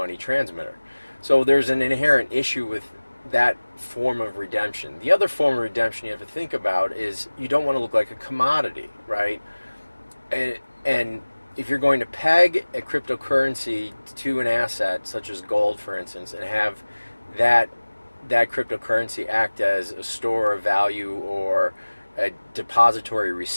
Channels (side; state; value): both; inverted; correlation -1.00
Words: transmitter. So there's an inherent issue with that form of redemption. The other form of redemption you have to think about is you don't want to look like a commodity, right? And if you're going to peg a cryptocurrency to an asset, such as gold, for instance, and have that cryptocurrency act as a store of value or a depository